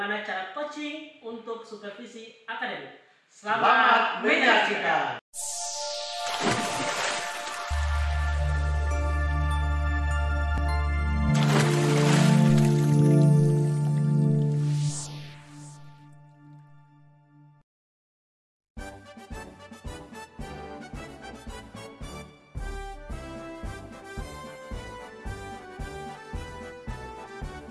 cara coaching untuk supervisi akademik. Selamat menyaksikan.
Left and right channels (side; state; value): both; identical; correlation 1.00